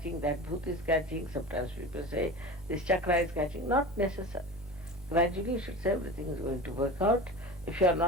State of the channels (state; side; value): normal; both; correlation 0.32